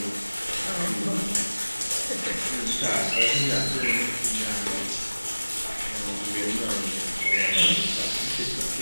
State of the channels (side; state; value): both; inverted; correlation -1.00